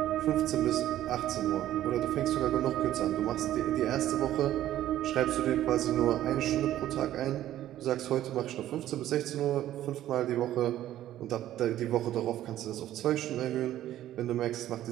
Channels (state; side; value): quieter; left; 13.0 dB